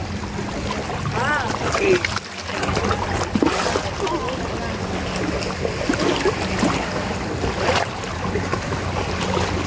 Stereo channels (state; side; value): identical; both; correlation 1.00